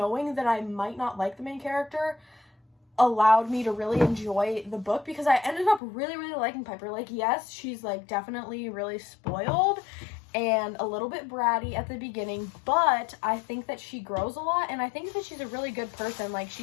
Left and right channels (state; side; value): drops out; right; at 5.8 s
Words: that I might not like the main character, allowed me to really enjoy the book, because I ended up really, really liking Piper. Like, yes, she's like definitely really spoiled and a little bit bratty at the beginning, but I think that she grows a lot, and I think that she's a really good person. Like,